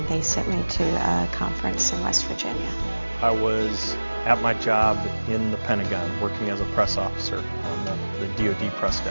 they sent me to a conference in West Virginia. I was at my job in the Pentagon, working as a press officer on the DoD press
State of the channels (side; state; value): both; inverted; correlation -1.00